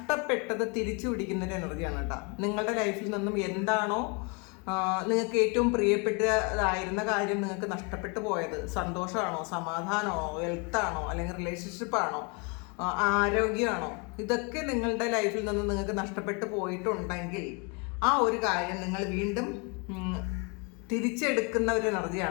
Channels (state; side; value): quieter; right; 32.5 dB